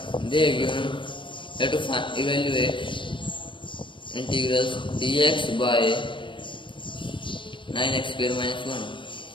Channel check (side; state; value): right; late; 0.24 ms